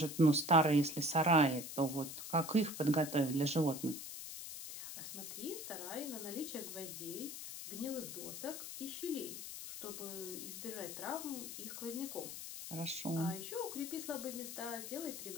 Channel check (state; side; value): noise; left; hiss, 8 dB below the sound